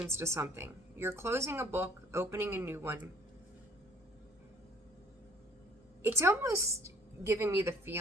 to something, you're closing a book, opening a new one. It's almost giving me the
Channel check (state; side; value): normal; both; correlation 0.57